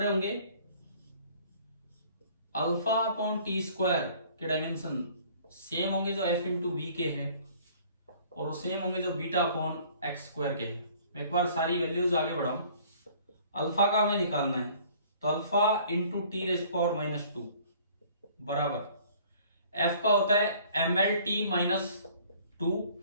होंगे। अल्फा अपॉन टी स्क्वायर के डायमेंशन सेम होंगे जो एफ इंटू वी के हैं, और वो सेम होंगे जो बीटा अपॉन एक्स स्क्वायर के हैं। एक बार सारी वैल्यूज आगे बढ़ाऊं। अल्फा का हमें निकालना है तो alpha into T rays power minus 2 बराबर एफ का होता है एम एल टी माइनस 2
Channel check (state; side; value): inverted; both; correlation -0.54